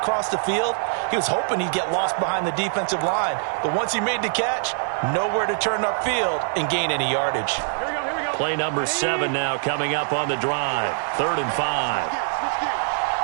the field. He was hoping he'd get lost behind the defensive line, but once he made the catch, nowhere to turn upfield and gain any yardage. Here we go. Play number 7 now coming up on the drive. 3rd and 5.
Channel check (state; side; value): silent; left; digital silence